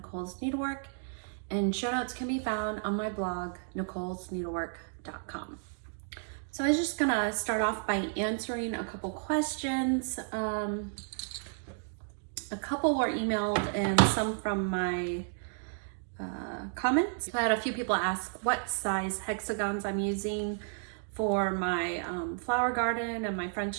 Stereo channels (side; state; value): left; silent; digital silence